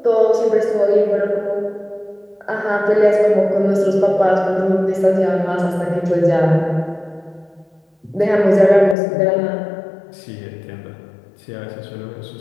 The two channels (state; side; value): drops out; right; at 9.0 s